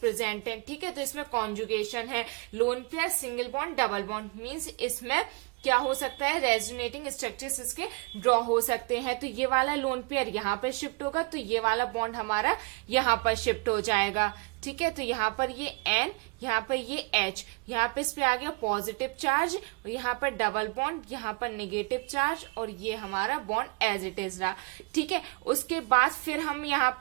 हैं, ठीक है। तो इसमें कॉन्जुगेशन है, lone pair, single bond, double bond, means इसमें क्या हो सकता है, रेजोनेटिंग स्ट्रक्चर्स इसके ड्रॉ हो सकते हैं। तो ये वाला लोन पेयर यहाँ पर शिफ्ट होगा, तो ये वाला बॉन्ड हमारा यहाँ पर शिफ्ट हो जाएगा, ठीक है। तो यहाँ पर ये N, यहाँ पर ये H, यहाँ पे इस पे आ गया पॉजिटिव चार्ज, और यहाँ पर डबल बॉन्ड, यहाँ पर नेगेटिव चार्ज, और ये हमारा बॉन्ड एज इट इज रहा, ठीक है। उसके बाद फिर हम यहाँ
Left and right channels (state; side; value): quieter; left; 30.2 dB